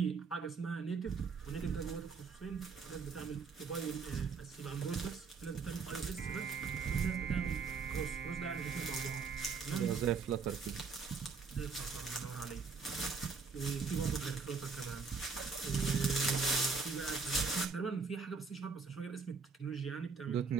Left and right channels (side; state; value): left; quieter; 5.1 dB